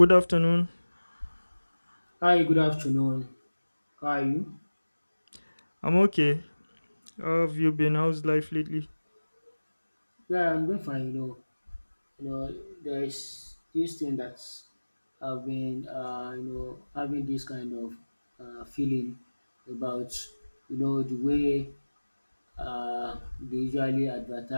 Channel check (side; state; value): both; inverted; correlation -1.00